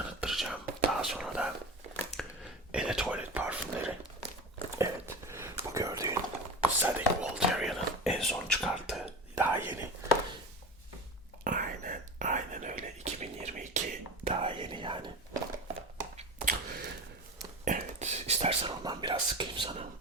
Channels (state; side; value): normal; both; correlation 0.29